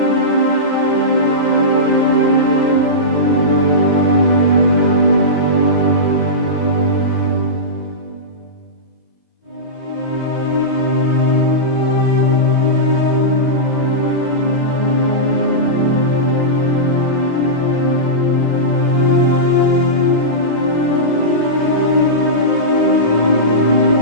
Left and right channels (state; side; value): late; right; 2.0 ms